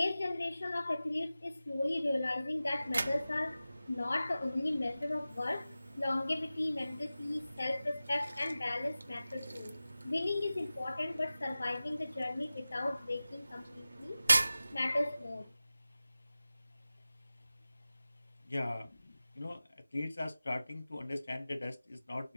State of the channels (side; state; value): both; inverted; correlation -0.96